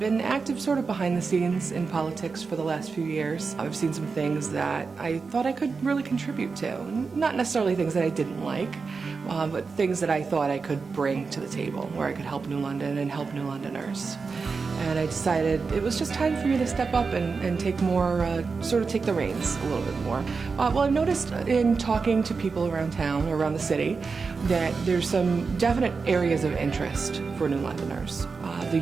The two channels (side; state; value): left; quieter; 4.8 dB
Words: active sort of behind the scenes in politics for the last few years. I've seen some things that I thought I could really contribute to. Not necessarily things that I didn't like, but things that I thought I could bring to the table, where I could help New London and help New Londoners. And I decided it was just time for me to step up and take more, sort of take the reins a little bit more. Well, I've noticed in talking to people around town, or around the city, that there's some definite areas of interest for New Londoners. The